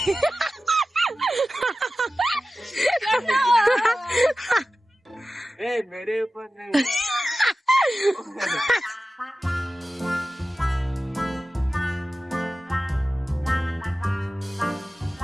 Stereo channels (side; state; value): both; normal; correlation 0.95